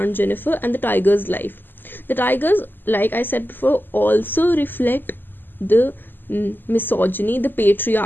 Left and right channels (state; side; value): late; right; 0.092 ms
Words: Jennifer and the tiger's life. The tigers, like I said before, also reflect the misogyny, the